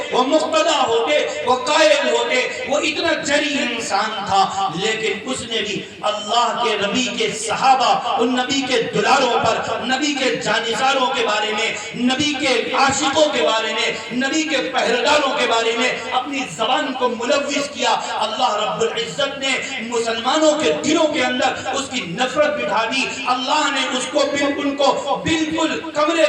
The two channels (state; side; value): identical; both; correlation 1.00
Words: وہ مقتدی ہوتے، وہ قائد ہوتے۔ وہ اتنا جری انسان تھا، لیکن اس نے بھی اللہ کے نبی کے صحابہ، ان نبی کے دلاروں پر، نبی کے جانثاروں کے بارے میں، نبی کے عاشقوں کے بارے میں، نبی کے پہرےداروں کے بارے میں اپنی زبان کو ملوث کیا۔ اللہ رب العزت نے مسلمانوں کے دلوں کے اندر اس کی نفرت بٹھا دی۔ اللہ نے اس کو بالکل کمرے